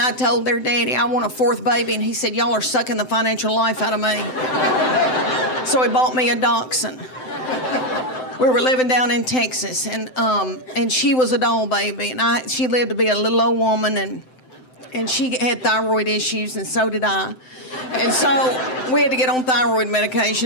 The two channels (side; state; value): right; late; 7.8 ms